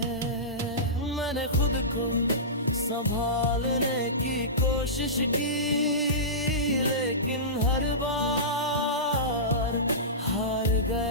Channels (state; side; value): normal; both; correlation -0.20